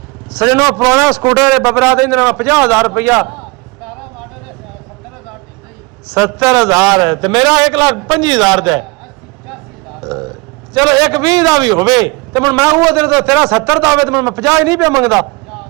ਸਜਣੋ, ਪੁਰਾਣਾ ਸਕੂਟਰ ਬਬਰਾ ਦੇ 50,000 ਰੁਪਇਆ 70,000 ਤੇ ਮੇਰਾ 1,25,000 ਦਾ। ਚਲੋ 1,20 ਦਾ ਵੀ ਹੋਵੇ ਤੇ ਹੁਣ ਮੈਂ ਉਹ ਦਿਨ ਤੇਰਾ 70 ਦਾ ਹੋਵੇ ਤੇ ਮੈਂ 50 ਹੀ ਨਹੀਂ ਪਿਆ ਮੰਗਦਾ।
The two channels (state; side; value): quieter; left; 26.3 dB